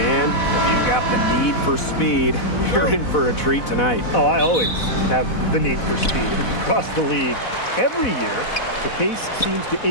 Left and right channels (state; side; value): late; right; 4.1 ms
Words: if you've got the need for speed, you're in for a treat tonight. Oh, I always have the need for speed across the league. Every year, the pace seems to